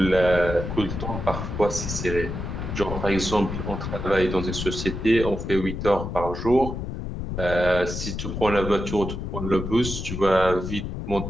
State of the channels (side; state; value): left; noise; rumble, 5 dB below the sound